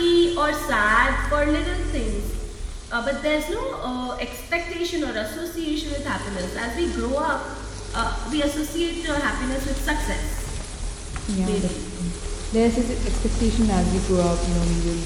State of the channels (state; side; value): identical; both; correlation 1.00